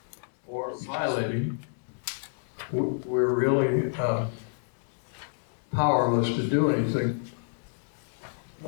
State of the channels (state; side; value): silent; right; digital silence